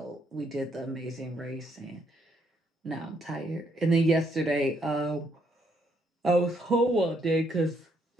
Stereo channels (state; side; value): normal; both; correlation 0.72